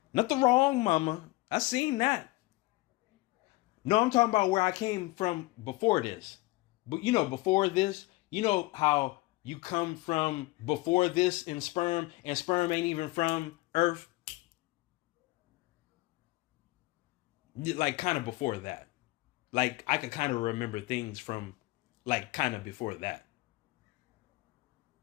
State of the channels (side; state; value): right; quieter; 21.4 dB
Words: Not the wrong mama. I seen that. No, I'm talking about where I came from before this. But you know, before this, you know how you come from before this in sperm, and sperm ain't even from Earth. Like kind of before that. Like, I could kind of remember things from, like, kind of before that.